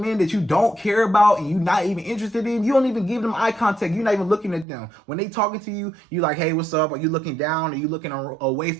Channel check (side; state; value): left; drops out; at 4.7 s